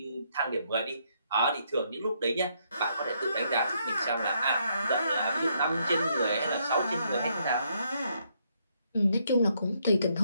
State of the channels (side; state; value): both; inverted; correlation -0.74